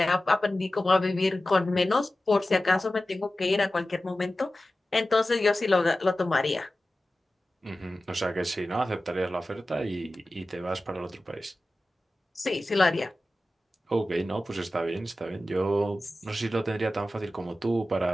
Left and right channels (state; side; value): normal; both; correlation 0.95